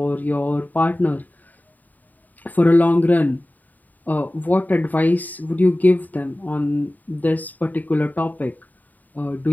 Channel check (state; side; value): late; right; 0.083 ms